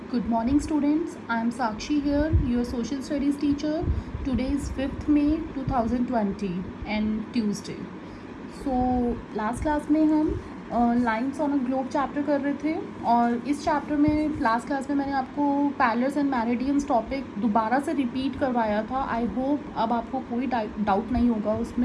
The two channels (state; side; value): identical; both; correlation 1.00